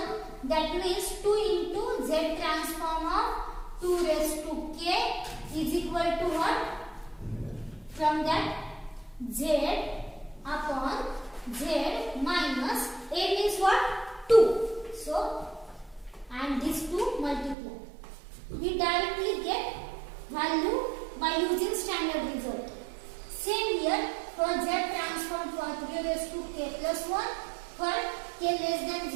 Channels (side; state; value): left; drops out; at 17.6 s